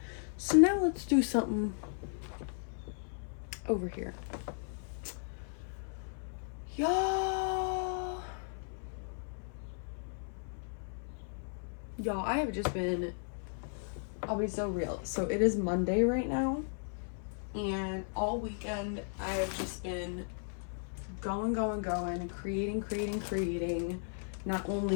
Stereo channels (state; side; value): silent; right; 54 dB below the other